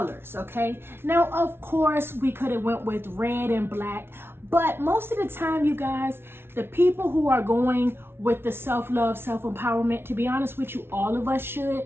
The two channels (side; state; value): left; late; 0.12 ms